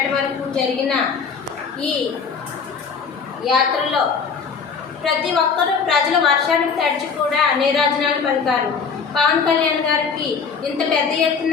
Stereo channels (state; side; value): quieter; right; 5.7 dB